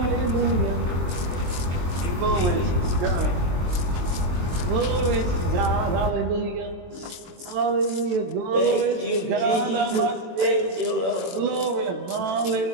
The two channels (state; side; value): late; left; 23 ms